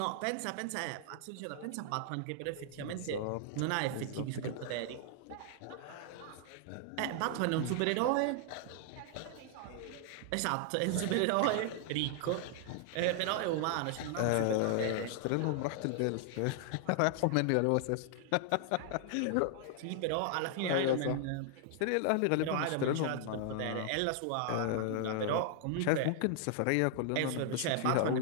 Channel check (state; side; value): different; both; correlation 0.00